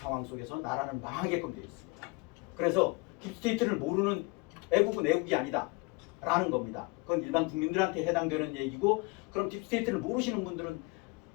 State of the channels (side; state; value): right; quieter; 26.6 dB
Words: 속에서 나라는 망하게끔 되어 있습니다. 그래서 딥스테이트를 모르는 애국은 애국이 아니다 라는 겁니다. 그건 일반 국민들한테 해당되는 얘기고, 그럼 딥스테이트를 모르시는 분들은